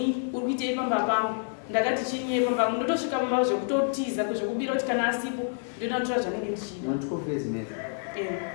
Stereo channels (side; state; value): right; silent; digital silence